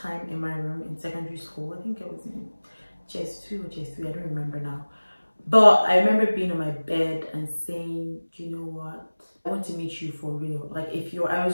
in my room in secondary school. I think I was in JS2 or JS3, I don't remember now. But I remember being on my bed and saying, you know what? I want to meet you for real. Like I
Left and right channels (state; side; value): inverted; both; correlation -1.00